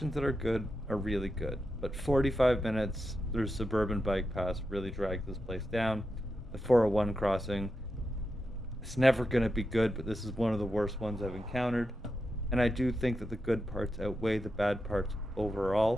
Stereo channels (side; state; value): both; normal; correlation 0.88